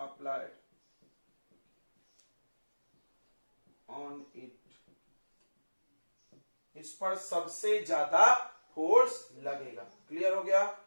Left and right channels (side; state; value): both; inverted; correlation -1.00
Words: on it, इस पर सबसे ज्यादा फोर्स लगेगा। क्लियर हो गया,